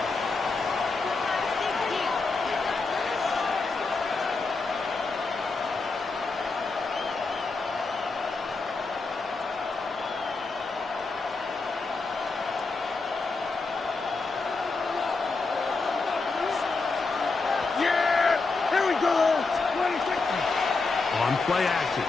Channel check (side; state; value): right; quieter; 3.9 dB